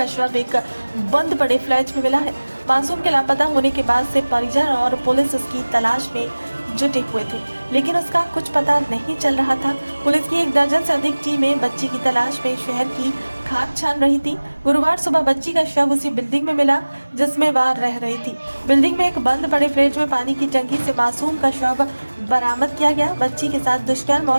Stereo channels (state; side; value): inverted; both; correlation -1.00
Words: शव एक बंद पड़े फ्लैट में मिला है। मासूम के लापता होने के बाद से परिजन और पुलिस उसकी तलाश में जुटे हुए थे, लेकिन उसका कुछ पता नहीं चल रहा था। पुलिस की 1 दर्जन से अधिक टीमें बच्ची की तलाश में शहर की खाक छान रही थी। गुरुवार सुबह बच्ची का शव उसी बिल्डिंग में मिला जिसमें वह रह रही थी। बिल्डिंग में एक बंद पड़े फ्लैट में पानी की टंकी से मासूम का शव बरामद किया गया। बच्ची के साथ दुष्कर्म और